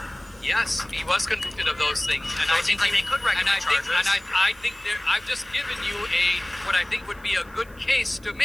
Yes, he was convicted of those things, and so it seems like they could recommend charges. I think I've just given you what I think would be a good case to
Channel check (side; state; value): right; noise; hiss, 27 dB below the sound